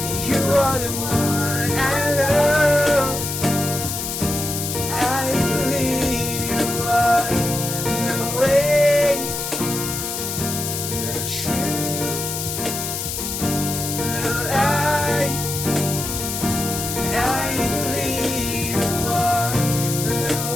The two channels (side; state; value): left; noise; hiss, 4 dB below the sound